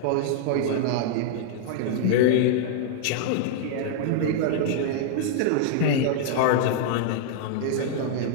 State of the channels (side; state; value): both; different; correlation -0.01